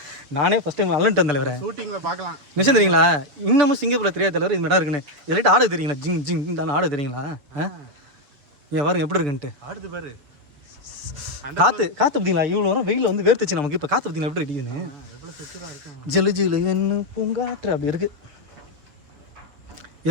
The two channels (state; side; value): late; left; 7.3 ms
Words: நானே ஃபஸ்ட் டைம் அலன்ட்டு தலைவரை ஷூட்டிங்கில் பார்க்கலாம். நிச்சயம் தெரியுங்களா? இன்னமும் சிங்கப்பூரில் தெரியாத தலைவர் இந்த இடம் இருக்குன்னு. இதெல்லாம் ஆடு தெரியுங்களா? ஜிங் ஜிங் தானே ஆடு தெரியுங்களா? ஏன் பாருங்க எப்படி இருக்குன்ட்டு. ஆடுது பாரு, காற்று பார்த்தீங்களா? இவ்வளோ வரும் வெயில் வந்து வேர்த்துச்சு நமக்கு. இப்போ காற்று பார்த்தீங்களா எப்படி அடிக்குதுன்னு? ஜெலு ஜிலு என்ன பூங்காற்று அப்படி இருக்குது.